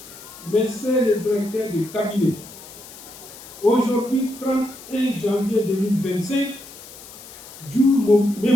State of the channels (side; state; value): left; noise; hiss, 17 dB below the sound